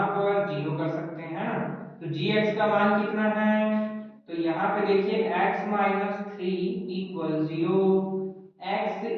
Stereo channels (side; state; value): both; identical; correlation 1.00